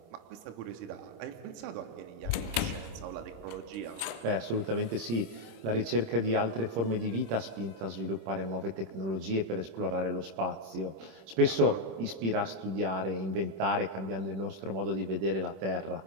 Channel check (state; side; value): late; left; 26 ms